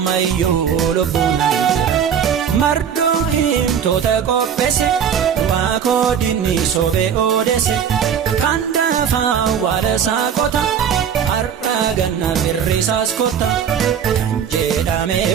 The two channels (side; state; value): left; quieter; 8.1 dB